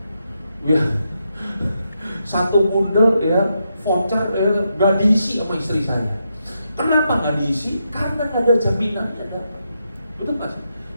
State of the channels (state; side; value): inverted; both; correlation -0.83